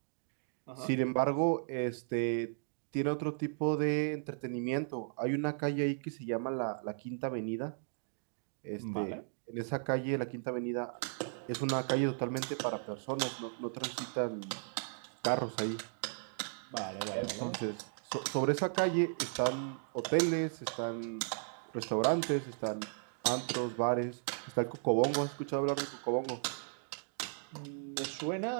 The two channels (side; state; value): left; silent; digital silence